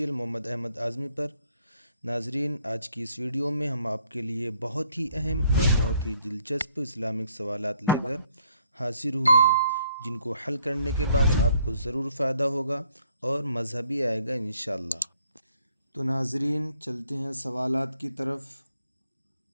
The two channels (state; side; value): inverted; both; correlation -0.67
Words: محمد احمد اعظمی پر۔ ناظرین، آج کی اس ویڈیو میں ہم آپ کے لیے بہت ہی اہم اور بہت ہی دلچسپ اسلامک سوالات لے کر حاضر ہوئے ہیں، جن کو حل کرنے کے بعد آپ کو ضرور فائدہ ہوگا اور مزہ بھی آئے گا انشاءاللہ۔ تو ناظرین، چلتے ہیں سوالات کی طرف۔